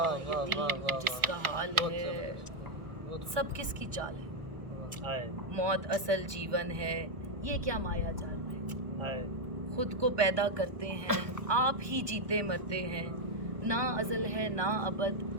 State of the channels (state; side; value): late; left; 1.1 ms